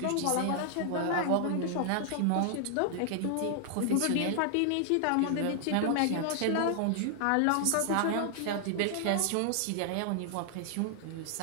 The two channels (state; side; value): different; both; correlation 0.00